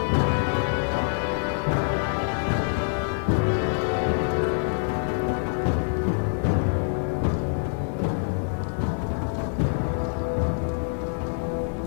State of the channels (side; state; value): right; silent; digital silence